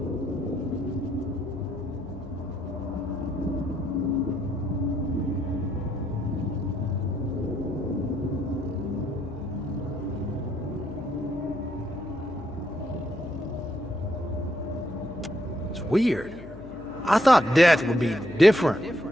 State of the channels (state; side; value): noise; left; hum, 16 dB below the sound